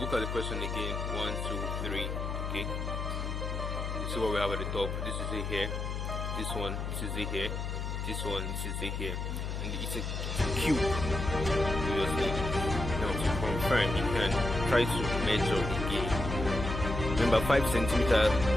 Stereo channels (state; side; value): noise; left; hum, 3 dB below the sound